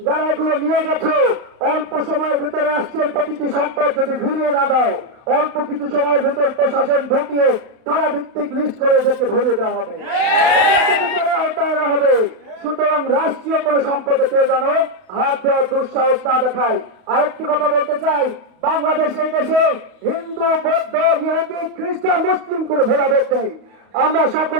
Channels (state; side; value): late; left; 32 ms